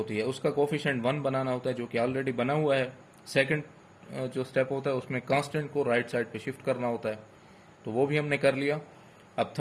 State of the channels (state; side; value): identical; both; correlation 1.00